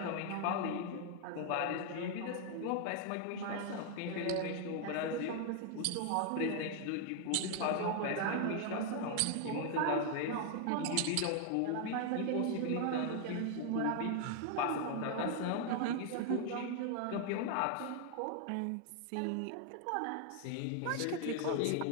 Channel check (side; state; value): both; different; correlation 0.00